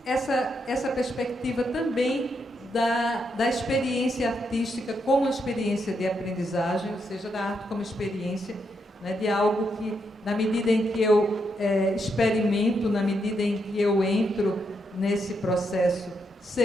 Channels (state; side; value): normal; both; correlation 0.80